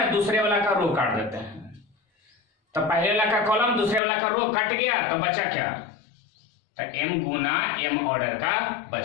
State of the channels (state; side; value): drops out; right; at 4.0 s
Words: दूसरे वाला का रो काट देते हैं। तो पहले वाला का कॉलम दूसरे वाला का रो कट गया, तो बचा क्या, तो m गुना m ऑर्डर का